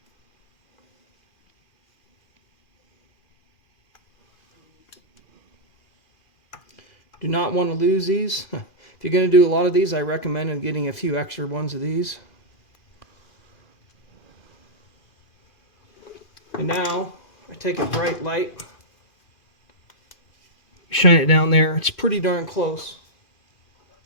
Do not want to lose these. If you're going to do a lot of these, I recommend getting a few extra ones of these. And now I take a bright light, shine it down there. It's pretty darn close.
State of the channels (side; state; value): right; late; 2.5 ms